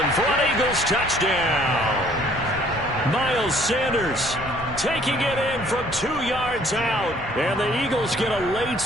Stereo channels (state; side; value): normal; both; correlation 0.59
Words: for an Eagles touchdown. Miles Sanders taking it in from 2 yards out. And the Eagles get a late